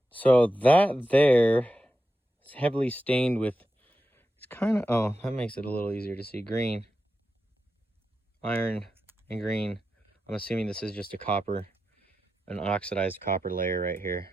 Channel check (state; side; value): normal; both; correlation 0.89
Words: So that there is heavily stained with, it's kind of, oh, that makes it a little easier to see. Green, iron, and green. I'm assuming this is just a copper, an oxidized copper layer right here.